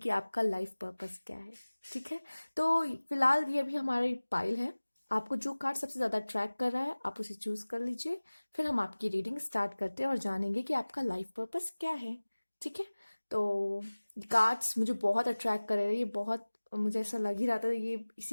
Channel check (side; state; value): both; inverted; correlation -1.00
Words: आपका लाइफ पर्पस क्या है। ठीक है, तो फिलहाल ये भी हमारी पाइल है। आपको जो कार्ड सबसे ज्यादा ट्रैक कर रहा है आप उसे चूज कर लीजिए। फिर हम आपकी रीडिंग स्टार्ट करते हैं और जानेंगे कि आपका लाइफ पर्पस क्या है। ठीक है, तो कार्ड्स मुझे बहुत अट्रैक्ट कर रहे हैं। ये बहुत, मुझे ऐसा लग ही रहा था ये